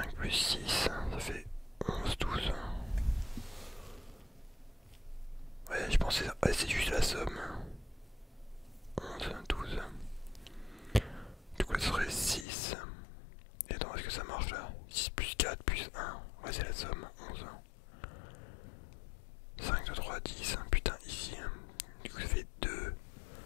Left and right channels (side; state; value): right; drops out; at 12.5 s